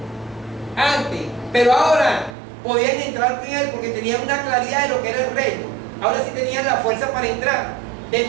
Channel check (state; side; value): drops out; left; at 2.4 s